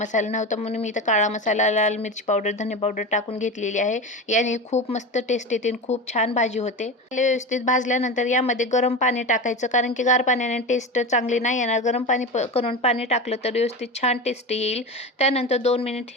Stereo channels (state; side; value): normal; both; correlation 0.25